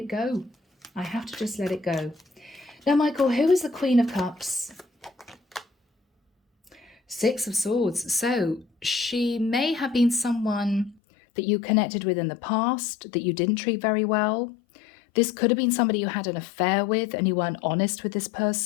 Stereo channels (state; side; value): drops out; right; at 11.0 s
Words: go. I have to just let it go. Now, Michael, who is the Queen of Cups? 6 of Swords. So she may have been someone that you connected with in the past that you didn't treat very well. This could have been somebody you had an affair with and you weren't honest with this